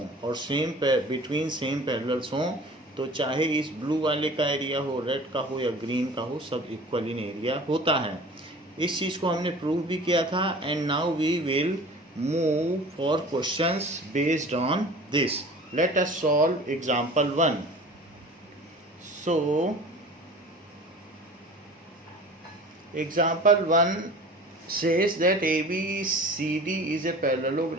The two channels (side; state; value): both; normal; correlation 0.42